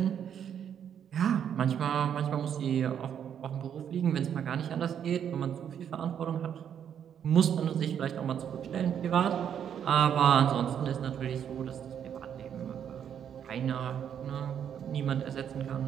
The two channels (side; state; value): left; quieter; 8.8 dB